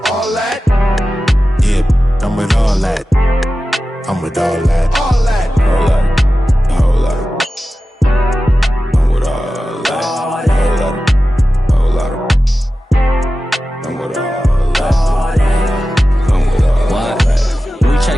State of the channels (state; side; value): normal; both; correlation 0.94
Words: All that? Yeah, I'm with all that. I'm with all that. All that. All that. All that. I'm with all that. All that. All that. I'm with all that. I'm with all that. We